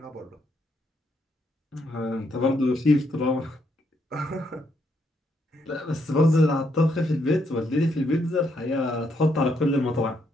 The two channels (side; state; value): both; normal; correlation 0.75